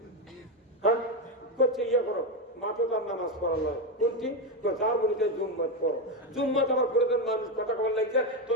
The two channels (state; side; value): normal; both; correlation 0.10